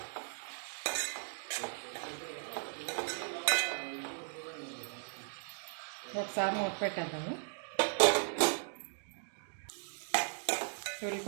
ఒకసారి మూత పెట్టేద్దాము.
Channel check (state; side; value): silent; left; digital silence